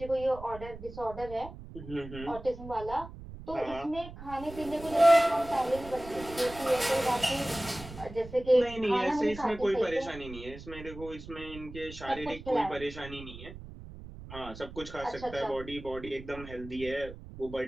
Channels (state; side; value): noise; right; rumble, 14 dB below the sound